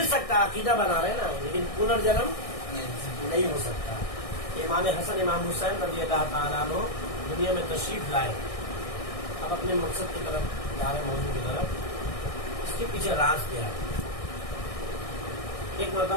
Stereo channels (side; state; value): right; late; 1.6 ms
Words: سکتا ہے، عقیدہ بنا رہے نا، لیکن پنرجنم نہیں ہو سکتا. امام حسن امام حسین رضی اللہ تعالیٰ عنہ دنیا میں تشریف لائے، اب اپنے مقصد کی طرف جا رہے، موضوع کی طرف. اس کے پیچھے راز کیا ہے؟ ایک